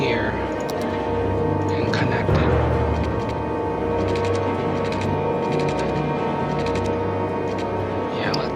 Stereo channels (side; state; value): both; identical; correlation 1.00